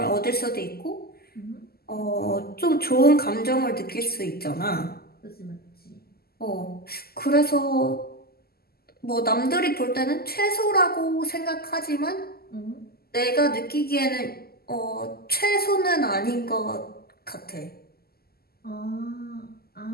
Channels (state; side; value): late; right; 0.45 ms